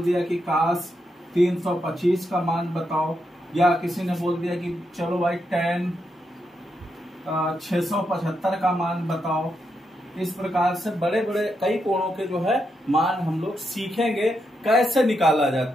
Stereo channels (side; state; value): both; normal; correlation 0.82